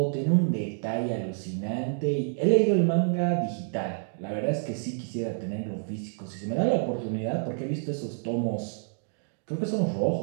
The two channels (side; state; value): left; silent; digital silence